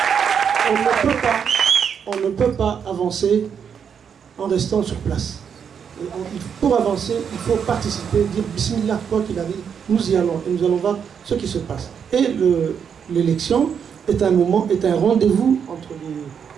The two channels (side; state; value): left; quieter; 7.3 dB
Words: On ne peut pas avancer en restant sur place. Pour avancer, il faut participer, dire Bismillah, quoi qu'il arrive, nous y allons et nous allons voir ce qui se passe. Et l'élection est un moment, est un rendez-vous entre les